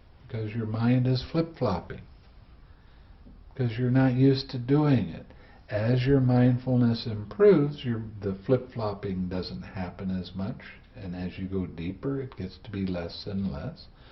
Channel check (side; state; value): both; identical; correlation 1.00